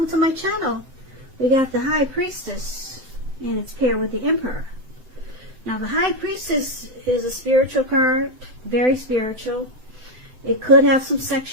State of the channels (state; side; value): late; left; 7.9 ms